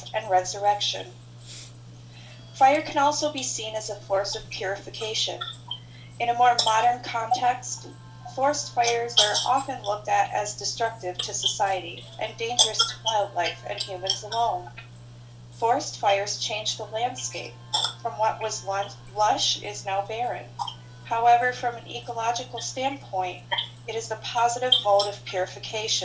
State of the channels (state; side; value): identical; both; correlation 1.00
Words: and resurrection. Fire can also be seen as a force of purification. In a more modern context, forest fires are often looked at as destructive to society and dangerous to wildlife and humans alone. Forest fires change the landscape. From what was once lush is now barren. However, from an ecological standpoint, it is the positive mode of